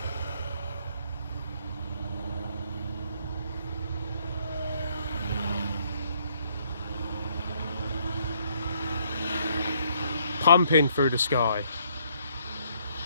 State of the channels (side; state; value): both; inverted; correlation -0.68